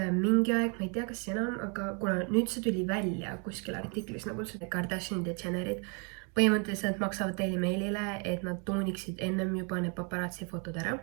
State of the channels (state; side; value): quieter; left; 36.2 dB